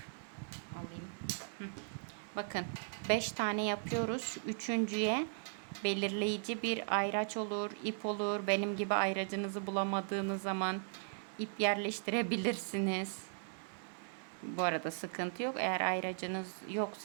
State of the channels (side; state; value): left; silent; digital silence